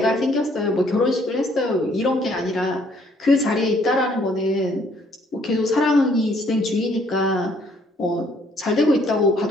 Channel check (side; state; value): both; normal; correlation 0.65